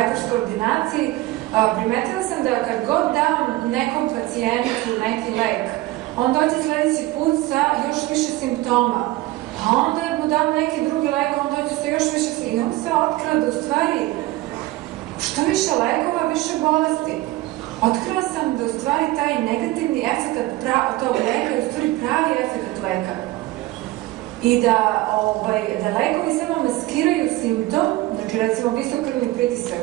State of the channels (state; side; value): quieter; left; 18.1 dB